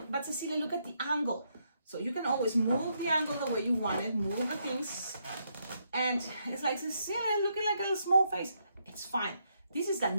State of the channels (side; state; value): both; inverted; correlation -0.77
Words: but Cecilia, look at the angle. So you can always move the angle the way you want it, move the things. And it's like, Cecilia, looking like a little small face. It's fine. This is the